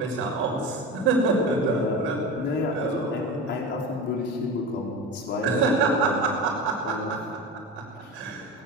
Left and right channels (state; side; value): normal; both; correlation 0.27